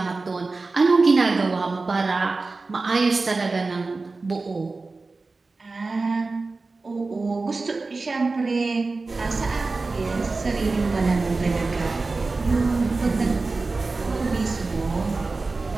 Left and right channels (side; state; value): left; quieter; 3.7 dB